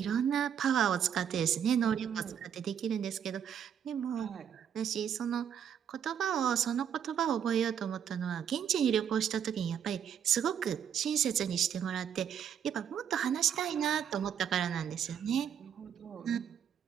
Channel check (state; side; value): quieter; left; 8.5 dB